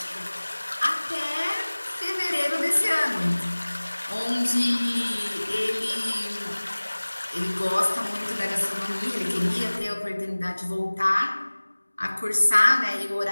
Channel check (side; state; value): both; inverted; correlation -1.00